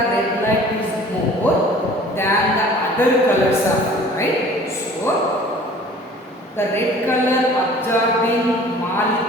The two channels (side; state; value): both; normal; correlation 0.48